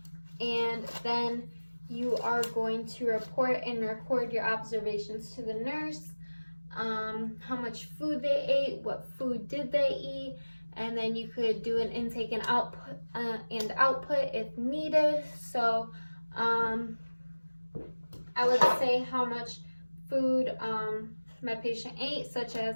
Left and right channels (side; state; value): both; inverted; correlation -1.00